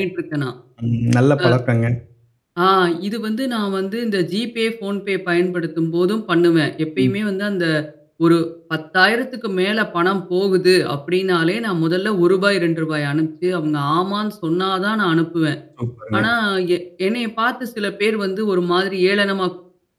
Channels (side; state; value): both; identical; correlation 1.00